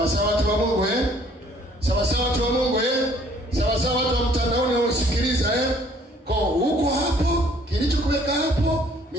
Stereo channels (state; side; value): normal; both; correlation 0.59